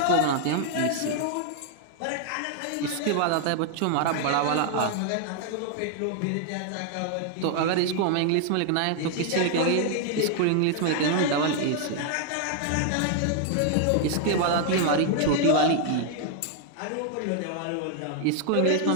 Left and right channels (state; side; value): different; both; correlation 0.00